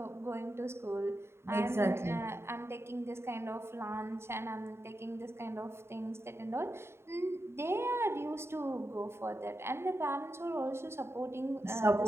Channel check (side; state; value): left; late; 0.12 ms